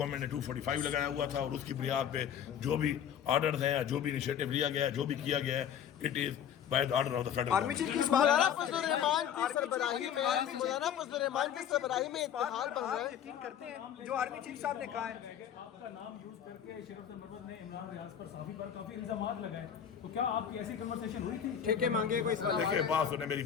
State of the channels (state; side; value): quieter; right; 8.9 dB